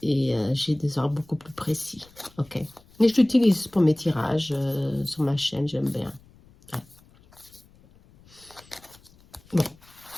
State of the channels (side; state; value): left; noise; rumble, 27 dB below the sound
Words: J'ai des ordres beaucoup plus précis. Ok. Mais je l'utilise pour mes tirages sur ma chaîne, j'aime bien. Ouais. Bon.